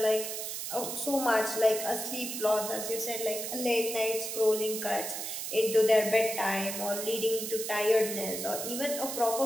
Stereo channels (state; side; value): noise; right; hiss, 5 dB below the sound